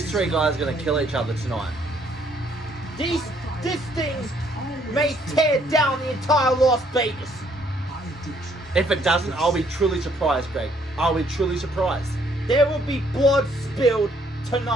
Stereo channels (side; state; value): both; normal; correlation 0.66